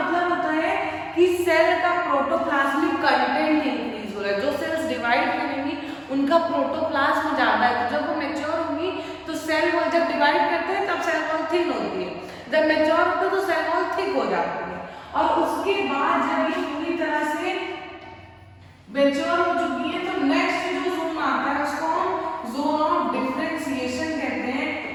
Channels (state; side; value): identical; both; correlation 1.00